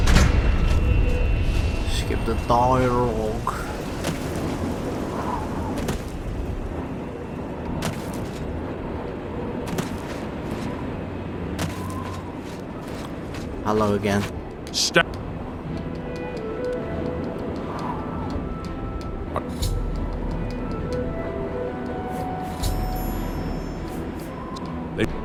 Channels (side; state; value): both; identical; correlation 1.00